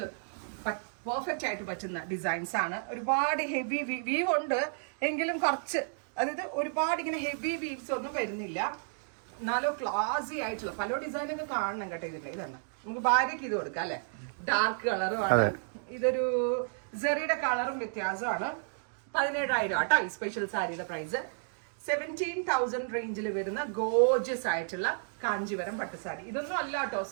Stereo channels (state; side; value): silent; left; digital silence